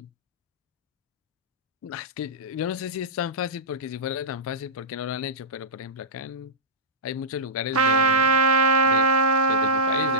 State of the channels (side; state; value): both; normal; correlation -0.14